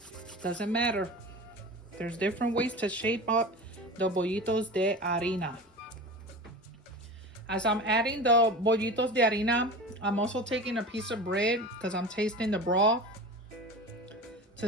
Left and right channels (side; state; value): both; normal; correlation 0.31